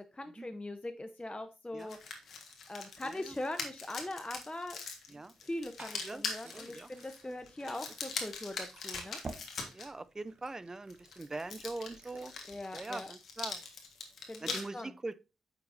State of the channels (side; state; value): both; normal; correlation 0.84